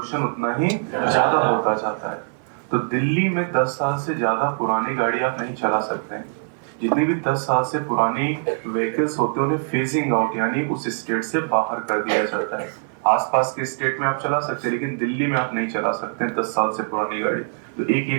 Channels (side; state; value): left; silent; 58 dB below the other